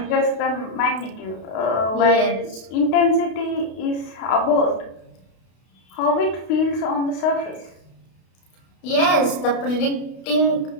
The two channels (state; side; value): late; right; 32 ms